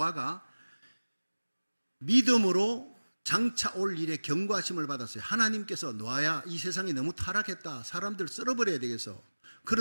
믿음으로 장차 올 일에 경과심을 받았어요. 하나님께서 노아야, 이 세상이 너무 타락했다. 사람들 썰어버려야 되겠어.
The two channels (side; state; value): both; inverted; correlation -1.00